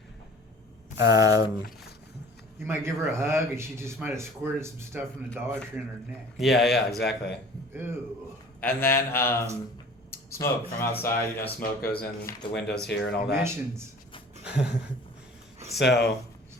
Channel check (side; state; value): both; normal; correlation 0.46